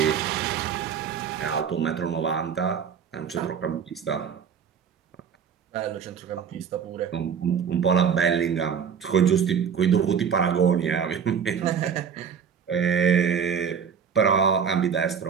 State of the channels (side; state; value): left; quieter; 7.3 dB